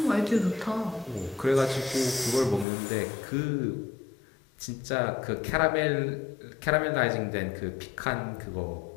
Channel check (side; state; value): right; drops out; at 2.7 s